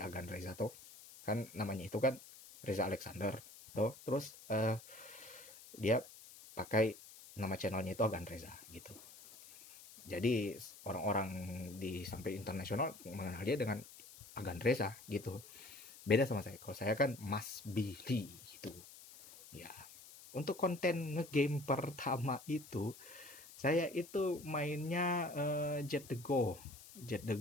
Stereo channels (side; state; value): left; noise; hiss, 18 dB below the sound